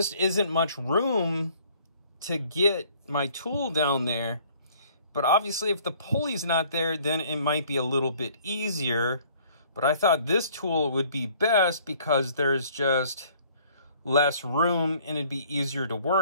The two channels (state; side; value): inverted; both; correlation -0.57